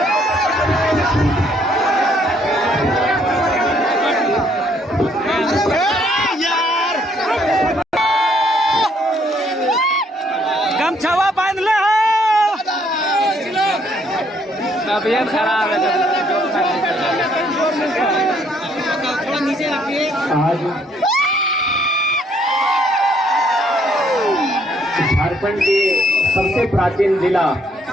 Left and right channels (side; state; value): both; normal; correlation 0.67